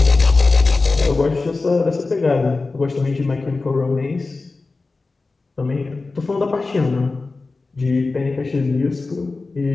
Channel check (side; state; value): right; quieter; 3.7 dB